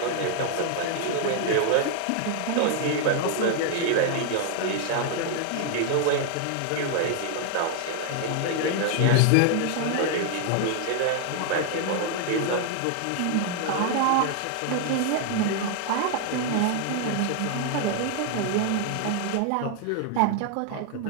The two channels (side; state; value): both; different; correlation 0.00